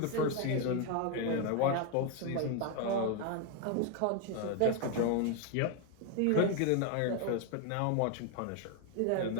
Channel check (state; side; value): different; both; correlation 0.01